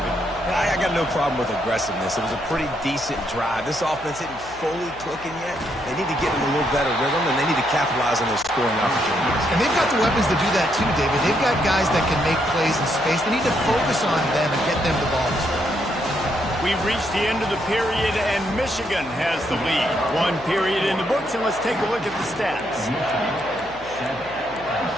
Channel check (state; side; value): noise; left; hum, 21 dB below the sound